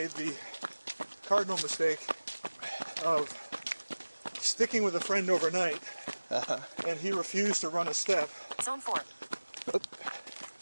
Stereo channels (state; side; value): inverted; both; correlation -1.00